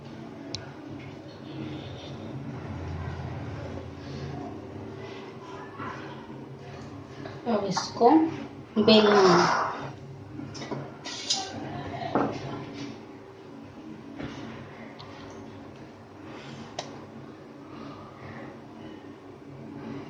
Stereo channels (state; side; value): identical; both; correlation 1.00